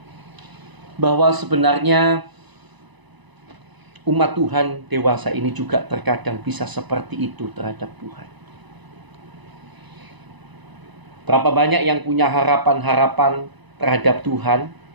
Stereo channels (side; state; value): left; late; 1.0 ms